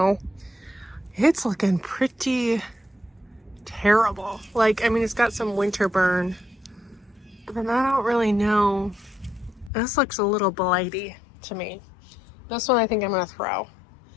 it's looking pretty terrible. Like, I mean, it's got some winter burn, but then I don't really know. This looks a little blighty to me. This one I think I'm going to throw.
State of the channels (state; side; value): drops out; right; at 9.7 s